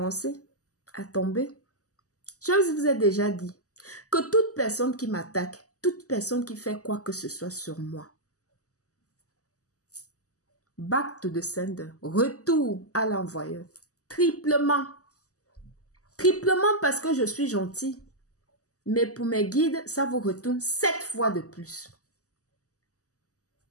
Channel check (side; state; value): right; late; 0.66 ms